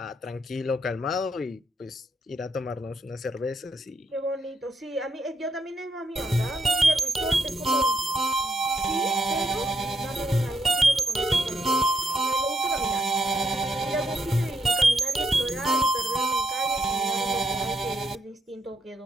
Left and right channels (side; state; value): both; normal; correlation 0.78